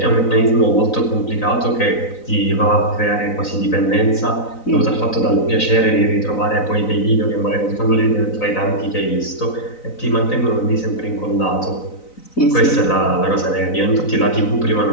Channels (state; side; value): late; right; 4.0 ms